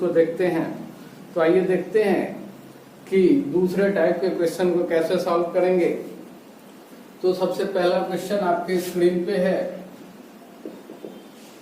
देखते हैं। तो आइए देखते हैं कि दूसरे टाइप के क्वेश्चन को कैसे सॉल्व करेंगे। तो सबसे पहला क्वेश्चन आपके स्क्रीन पे है,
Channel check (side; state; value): both; identical; correlation 1.00